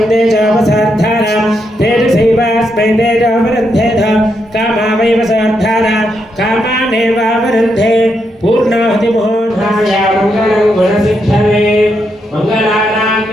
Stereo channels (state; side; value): normal; both; correlation 0.81